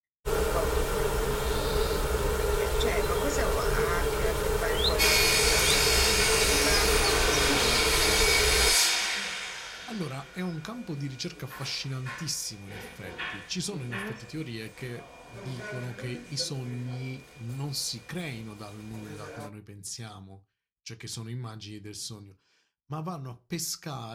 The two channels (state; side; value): identical; both; correlation 1.00